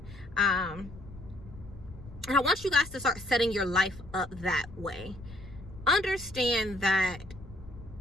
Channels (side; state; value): left; noise; rumble, 16 dB below the sound